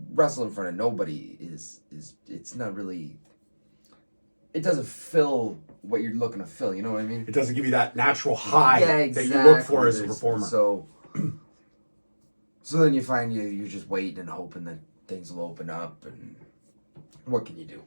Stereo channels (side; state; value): both; inverted; correlation -1.00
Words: wrestle in front of nobody is it's not really. It doesn't fill what you're looking to fill. You know what I mean? It doesn't give you that natural high that you look for as a performer. So then you find you're just waiting and hoping that things will open up. And what can you do?